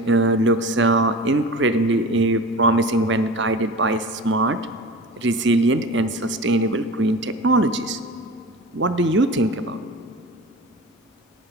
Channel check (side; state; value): both; normal; correlation 0.34